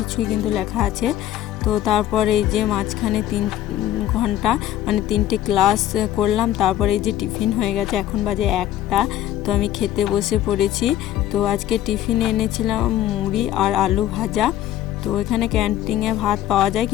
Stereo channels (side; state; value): right; quieter; 12.6 dB